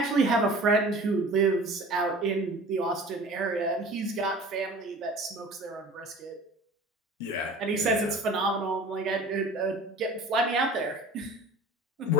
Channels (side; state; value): both; normal; correlation 0.43